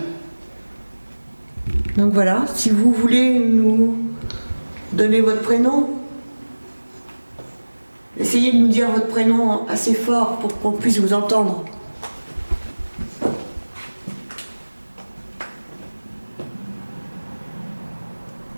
Donc voilà, si vous voulez nous donner votre prénom, essayez de nous dire votre prénom assez fort pour qu'on puisse vous entendre.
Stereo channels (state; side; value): inverted; both; correlation -1.00